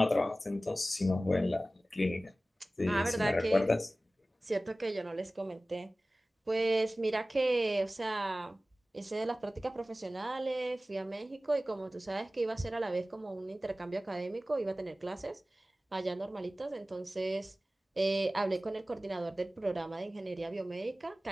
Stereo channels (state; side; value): normal; both; correlation 0.97